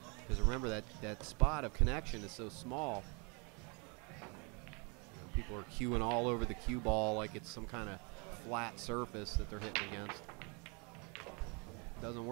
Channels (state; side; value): quieter; left; 32.8 dB